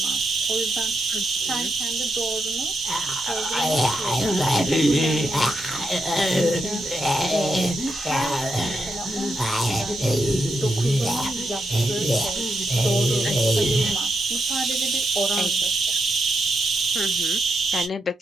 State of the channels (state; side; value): normal; both; correlation 0.84